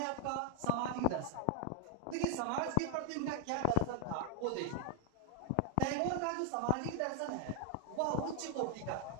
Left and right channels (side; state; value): both; different; correlation 0.00